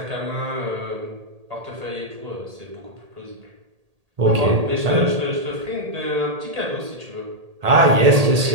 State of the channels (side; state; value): left; late; 1.8 ms